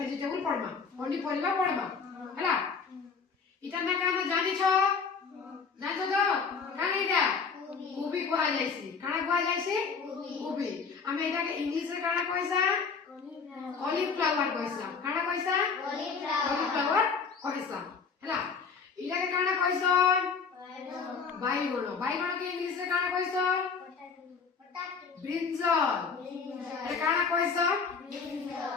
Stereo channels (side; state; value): right; quieter; 5.5 dB